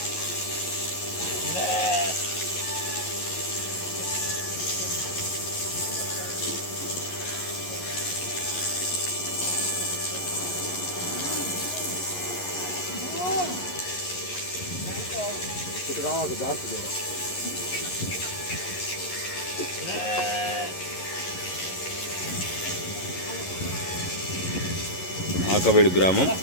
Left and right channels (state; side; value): late; right; 11 ms